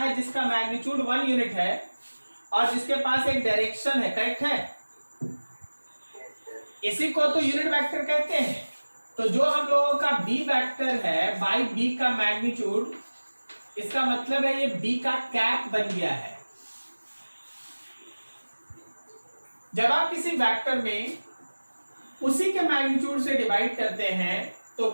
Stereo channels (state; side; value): inverted; both; correlation -1.00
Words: जिसका मैग्नीट्यूड 1 यूनिट है और जिसके पास एक डायरेक्शन है, करेक्ट है? इसी को तो यूनिट वेक्टर कहते हैं। तो जो हम लोगों का b वेक्टर है बाई b का मैग्नीट्यूड, इसका मतलब है ये b का कैप बन गया है। जब आप किसी वेक्टर में उसी के मैग्नीट्यूड से डिवाइड करते हैं तो